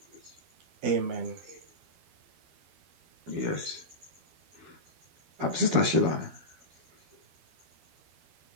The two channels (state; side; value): late; left; 12 ms